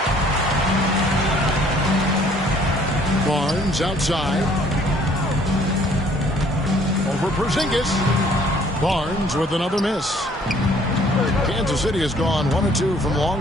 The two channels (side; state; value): both; normal; correlation 0.59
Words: Barnes outside. Over Porzingis. Barnes with another miss. Kansas City has gone 1 of 2 from